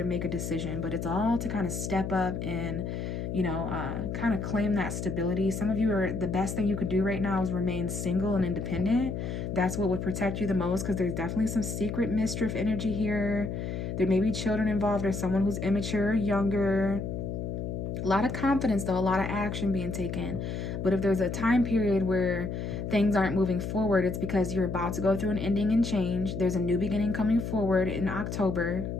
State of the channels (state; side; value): noise; left; hum, 4 dB below the sound